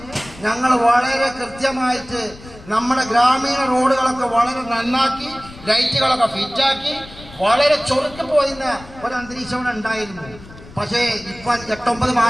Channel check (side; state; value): left; noise; rumble, 19 dB below the sound